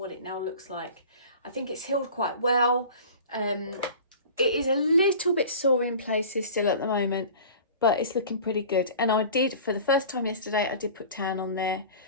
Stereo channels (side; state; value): both; inverted; correlation -0.40